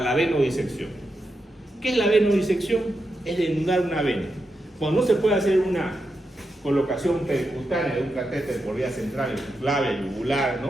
venodisección. ¿Qué es la venodisección? Es desnudar una vena. Cuando no se puede hacer una colocación percutánea de un catéter por vía central, clave, yugular,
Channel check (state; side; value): normal; both; correlation 0.87